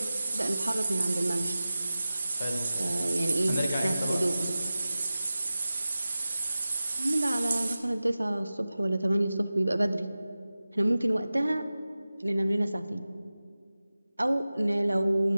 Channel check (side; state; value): both; inverted; correlation -0.96